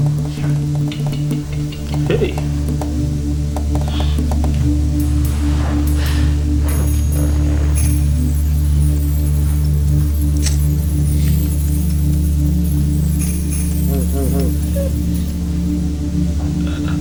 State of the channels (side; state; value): both; identical; correlation 1.00